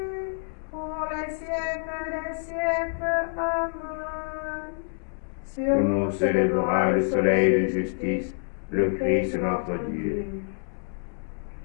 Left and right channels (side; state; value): right; silent; digital silence